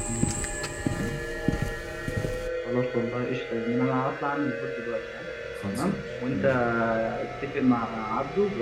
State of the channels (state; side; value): identical; both; correlation 1.00